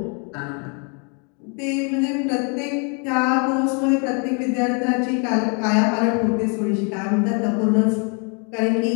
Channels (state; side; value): quieter; right; 36.8 dB